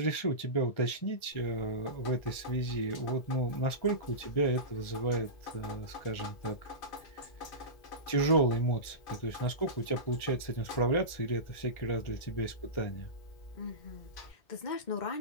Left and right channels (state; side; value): late; right; 1.4 ms